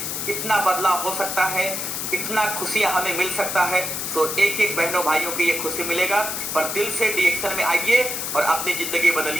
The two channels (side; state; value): left; noise; hiss, 3 dB below the sound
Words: इतना बदलाव हो सकता है, इतना खुशियां हमें मिल सकता है, तो एक एक बहनों भाइयों की ये खुशी मिलेगा। पर दिल से डीएक्शन में आइए और अपनी जिंदगी